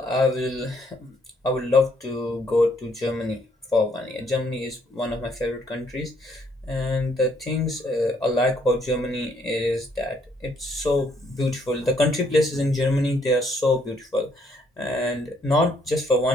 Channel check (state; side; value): normal; both; correlation 0.69